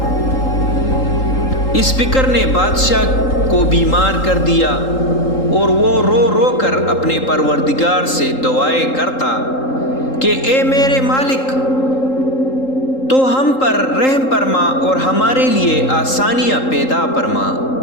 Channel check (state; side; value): late; right; 3.8 ms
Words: اس فکر نے بادشاہ کو بیمار کر دیا اور وہ رو رو کر اپنے پروردگار سے دعائیں کرتا کہ اے میرے مالک، تو ہم پر رحم فرما اور ہمارے لیے آسانیاں پیدا فرما۔